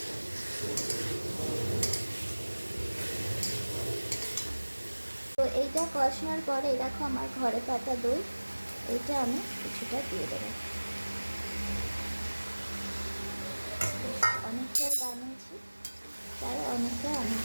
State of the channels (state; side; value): inverted; both; correlation -1.00